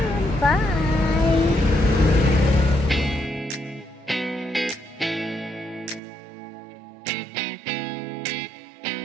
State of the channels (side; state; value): left; drops out; at 6.0 s